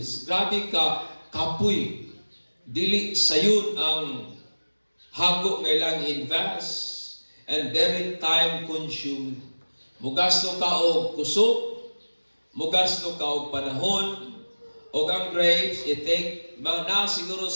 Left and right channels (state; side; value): inverted; both; correlation -1.00